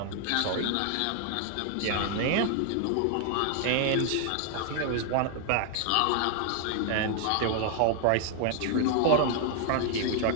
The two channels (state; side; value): different; both; correlation 0.00